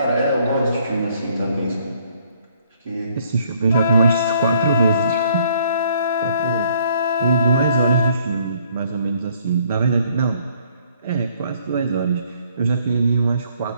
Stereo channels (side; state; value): both; inverted; correlation -0.64